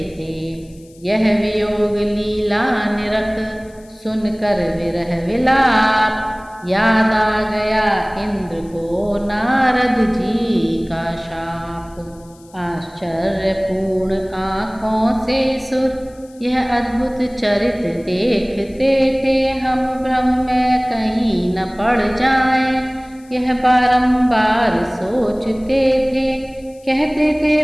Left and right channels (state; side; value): noise; left; hiss, 28 dB below the sound